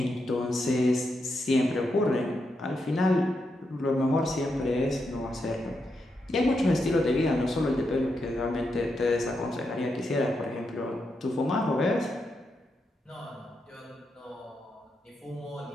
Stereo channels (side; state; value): both; normal; correlation 0.84